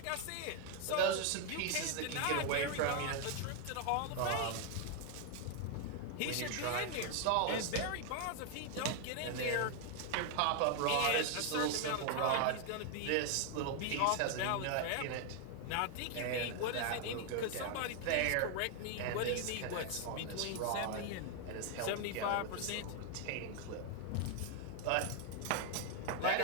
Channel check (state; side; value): different; both; correlation 0.00